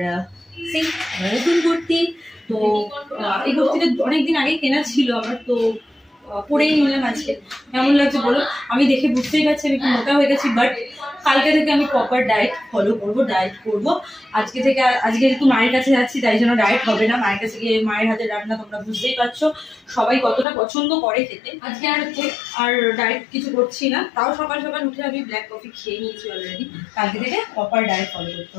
নতুন কুর্তি, তো এই কুর্তিটা অনেকদিন আগে কেনা ছিল আমার, তো পরেই নিলাম আজকে। কেমন লাগছে বলো? আমি দেখে বুঝতেই পারছি আমি একটু মোটা হয়ে গেছি, বাট কালকে থেকে আমি প্রপার ডায়েট ফলো করবো, ডায়েট করবো আজকে থেকে। আজকে একটু মায়ের কাছে যাচ্ছি, তাই জন্য ডায়েট হবে না। মায়ের কাছে গিয়ে মায়ের হাতে রান্না তোমরা বুঝতেই পারছো সবাই কতটা পছন্দ করে খেতে। আজকে আর ডায়েট কিছু করছি না, তাও সকাল সকাল উঠে আমি ব্ল্যাক কফি খেয়ে নিয়েছি অলরেডি। কালকে থেকে প্রপার ডায়েট ফলো করতে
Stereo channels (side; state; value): right; drops out; at 20.5 s